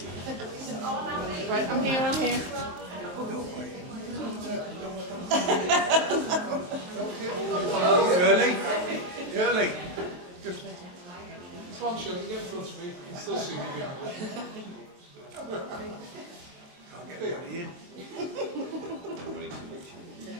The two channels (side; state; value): left; late; 28 ms